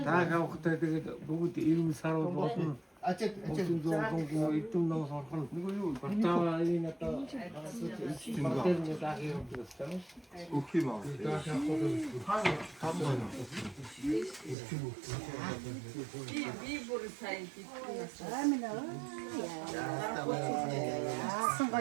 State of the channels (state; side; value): drops out; left; at 14.6 s